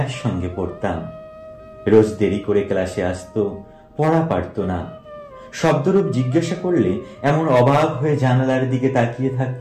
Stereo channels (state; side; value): identical; both; correlation 1.00